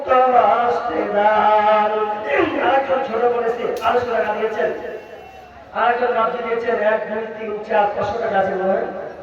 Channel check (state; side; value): identical; both; correlation 1.00